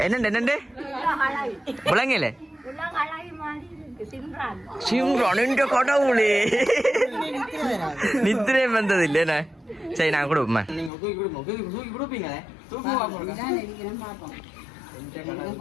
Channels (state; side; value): drops out; right; at 10.9 s